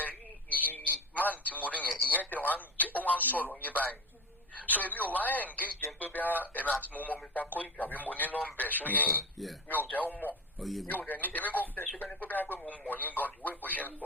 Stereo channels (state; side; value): normal; both; correlation 0.24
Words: rí ìyí máàlì tí mo rí yẹn ìyẹn tẹ̀ ó wá ń sọ̀rọ̀ yín báyìí. So èmi ò wá engage jẹ́ pé bí ẹ̀mí àti mo mọ Mr. Koiki àbí mo ní nọ́mbẹ̀ ṣó yẹ yín mi ò jẹ́ ó mọ̀ mi ò dẹ̀ ní èmi kò fẹ́ ṣe bẹ́ni pé bí mo mọ̀ yín gan ìwé ìbò ṣe ń